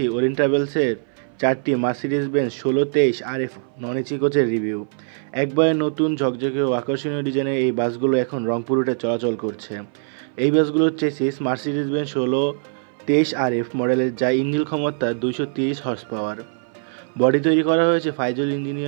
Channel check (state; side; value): silent; left; 61 dB below the other